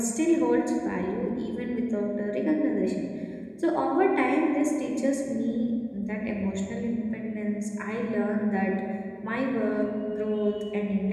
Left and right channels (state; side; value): identical; both; correlation 1.00